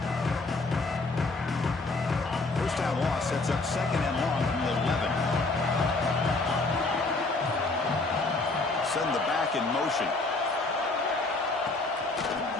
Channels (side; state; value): right; quieter; 3.3 dB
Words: First down loss sets up second and long from the 11. Send the back in motion.